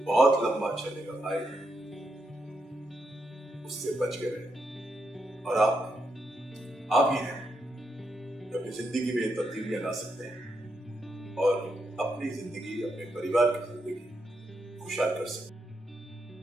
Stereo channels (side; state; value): both; normal; correlation 0.82